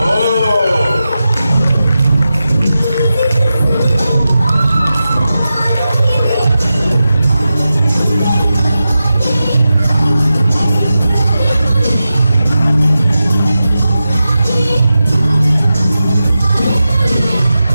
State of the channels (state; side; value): inverted; both; correlation -0.92